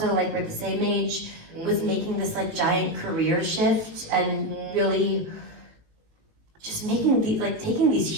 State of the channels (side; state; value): left; late; 18 ms